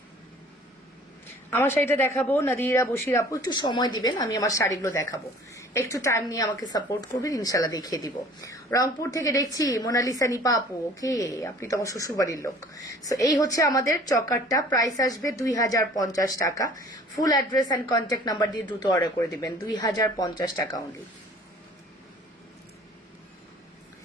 আমার শাড়িটা দেখাবো, নাদিরা বশির আপু একটু সময় দিবেন, আমি আমার শাড়িগুলো দেখাবো, একটু টাইম নিয়ে আমাকে সাপোর্ট করবেন, ইনশাল্লাহ দেখিয়ে দিব। রংপুর থেকে দেখছি মোনালিসা নিপা আপু, ওকে, আপনি তো আমার শ্বশুর বাড়ির লোক। সো এই হচ্ছে আমাদের চকারটা, প্রাইস আসবে 2050 টাকা। Full address and contact number দিয়ে দ্রুত অর্ডার করে দিবেন, 2050 টাকা অনলি।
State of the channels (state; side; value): normal; both; correlation 0.49